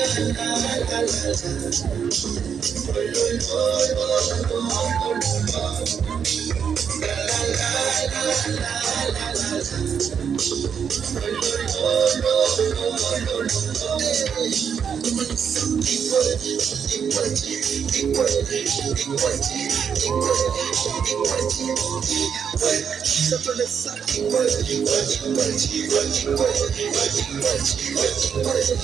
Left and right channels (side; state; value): left; quieter; 7.3 dB